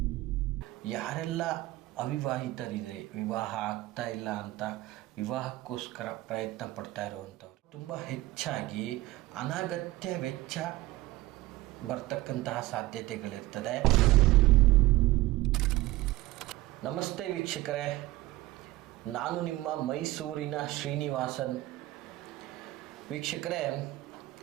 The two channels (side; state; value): left; quieter; 18.2 dB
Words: ಯಾರೆಲ್ಲ ಅವಿವಾಹಿತರಿದೆ, ವಿವಾಹ ಆಗ್ತಾ ಇಲ್ಲ ಅಂತ ವಿವಾಹಕ್ಕೋಸ್ಕರ ಪ್ರಯತ್ನ ಪಡ್ತಾ ಇರುವಂಥವ್ರು, ತುಂಬ ಹೆಚ್ಚಾಗಿ ಅನಗತ್ಯ ವೆಚ್ಚ ಬರ್ತಕ್ಕಂತಹ ಸಾಧ್ಯತೆಗಳಿರ್ತದೆ. ನಮಸ್ತೆ ವೀಕ್ಷಕರೇ, ನಾನು ನಿಮ್ಮ ಮೈಸೂರಿನ ಶ್ರೀನಿವಾಸನ್. ವೀಕ್ಷಕರೇ,